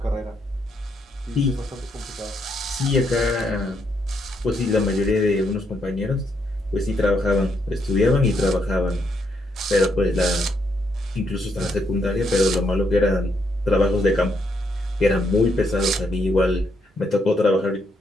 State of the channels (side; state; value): both; normal; correlation 0.76